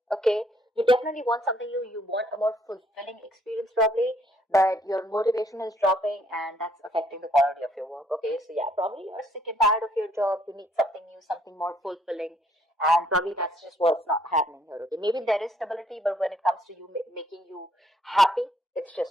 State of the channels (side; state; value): both; normal; correlation 0.66